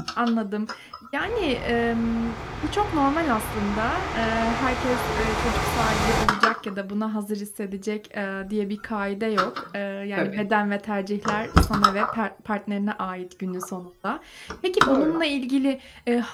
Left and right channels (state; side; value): identical; both; correlation 1.00